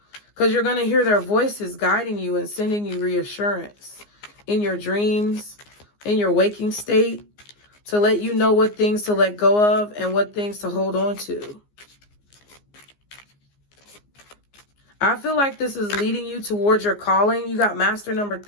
Because you're going to hear their voices guiding you and sending you reassurance in your dreams, in your waking state, to let you know what things to let go of and what things to hold on to. I feel like this is leading you towards your calling. You got master number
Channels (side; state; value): right; late; 15 ms